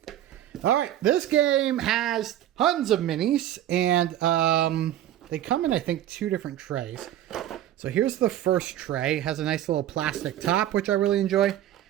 All right. This game has tons of minis. And they come in, I think, 2 different trays. So here's the first tray. It has a nice little plastic top, which I really enjoy.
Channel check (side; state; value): left; quieter; 12.1 dB